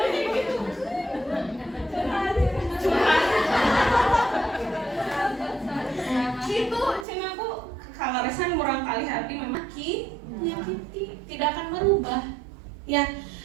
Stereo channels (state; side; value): drops out; left; at 7.1 s